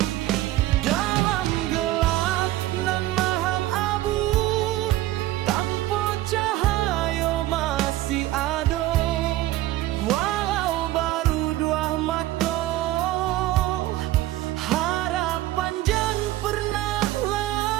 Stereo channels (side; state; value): left; quieter; 15.7 dB